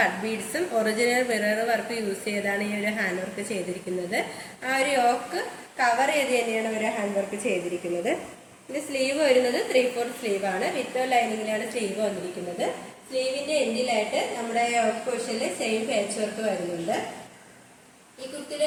ബീഡ്സും ഒറിജിനൽ മിറർ വർക്ക് യൂസ് ചെയ്താണ് ഈ ഒരു ഹാൻഡ് വർക്ക് ചെയ്തിരിക്കുന്നത്. ആ ഒരു യോക്ക് കവർ ചെയ്ത് തന്നെയാണ് ഒരു ഹാൻഡ് വർക്ക് ചെയ്തിരിക്കുന്നത്. ഇതിന്റെ സ്ലീവ് വരുന്നത് 3/4 സ്ലീവ് ആണ്. വിത്ത് ലൈനിങ്ങിലാണ് സ്ലീവ് വന്നിരിക്കുന്നത്. സ്ലീവിന്റെ എൻഡിലായിട്ട് നമ്മുടെ യോക്ക് പോർഷനിൽ സെയിം പാച്ച് വർക്ക് വരുന്നുണ്ട്. ഈ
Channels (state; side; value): identical; both; correlation 1.00